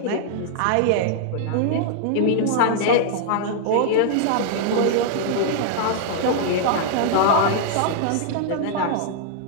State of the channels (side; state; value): both; different; correlation -0.01